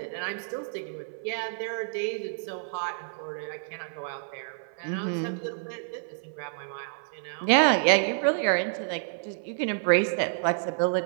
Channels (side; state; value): left; silent; 55 dB below the other